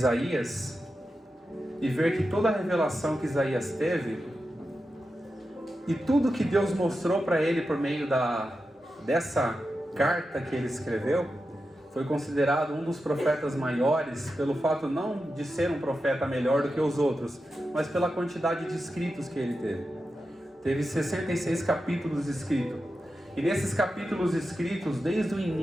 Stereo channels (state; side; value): normal; both; correlation 0.90